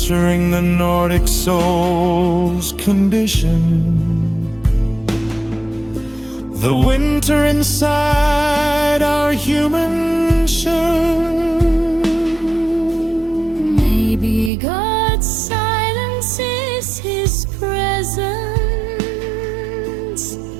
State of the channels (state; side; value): drops out; left; at 14.5 s